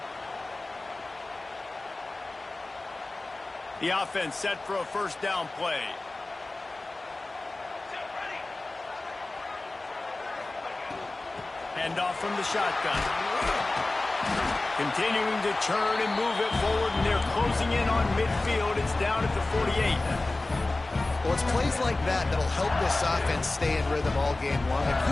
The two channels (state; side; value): quieter; right; 3.0 dB